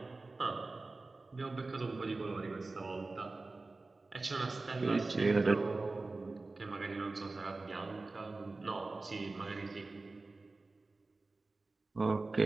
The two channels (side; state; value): left; quieter; 3.4 dB